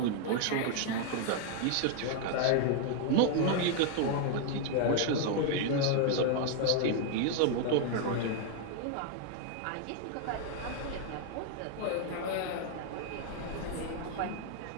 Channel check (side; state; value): both; different; correlation 0.00